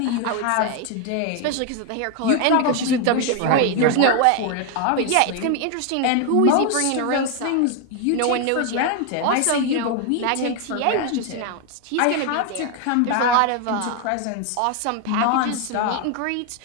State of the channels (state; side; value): different; both; correlation 0.01